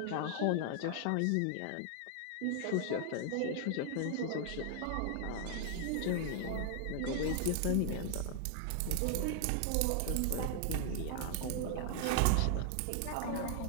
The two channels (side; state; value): both; different; correlation 0.00